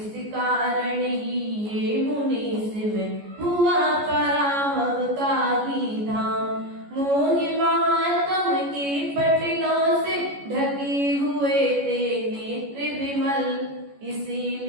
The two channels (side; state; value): left; late; 14 ms